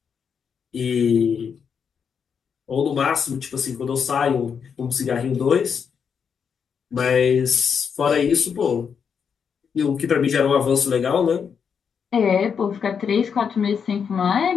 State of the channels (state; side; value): quieter; right; 6.8 dB